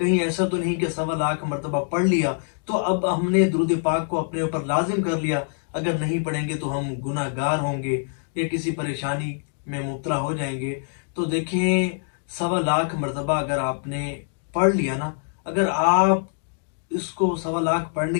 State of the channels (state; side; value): silent; right; 62 dB below the other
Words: ایسا تو نہیں کہ 1.25 مرتبہ پڑھ لیا تو اب ہم نے درود پاک کو اپنے اوپر لازم کر لیا، اگر نہیں پڑھیں گے تو ہم گناہ گار ہوں گے یا کسی پریشانی میں مبتلا ہو جائیں گے۔ تو دیکھیں، 1.25 مرتبہ اگر آپ نے پڑھ لیا نا، اگر آپ اس کو 1.25